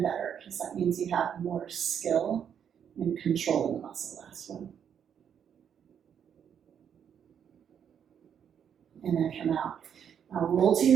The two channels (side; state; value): left; quieter; 8.3 dB